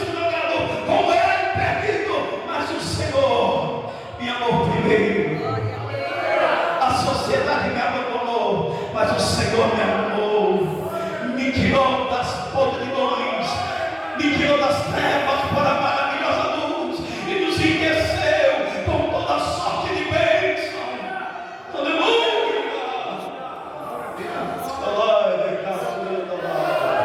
drogado, como eu era perdido, mas o Senhor me amou primeiro. A sociedade me abandonou, mas o Senhor me amou, me tirou das podridões, me tirou das trevas para a maravilhosa luz e nos enriqueceu com toda sorte de bênção. Aleluia!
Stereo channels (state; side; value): identical; both; correlation 1.00